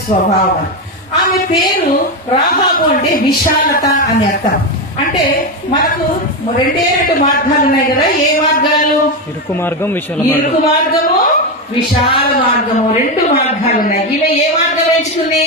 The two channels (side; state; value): both; normal; correlation 0.11